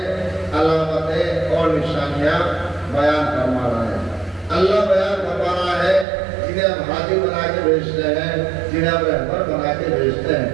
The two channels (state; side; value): drops out; left; at 6.1 s